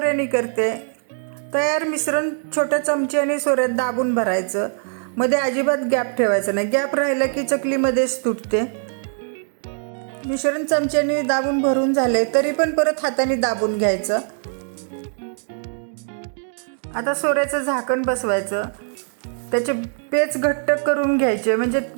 करते. तयार मिश्रण छोट्या चमच्याने सोऱ्यात दाबून भरायचं. मध्ये अजिबात गॅप ठेवायचा नाही. गॅप राहिला की चकलीमध्येच तुटते. मिश्रण चमच्याने दाबून भरून झाले तरी पण परत हाताने दाबून घ्यायचं. आता सोऱ्याचं झाकण बसवायचं. त्याचे पेच घट्ट करून घ्यायचे म्हणजे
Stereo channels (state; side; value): silent; left; 64 dB below the other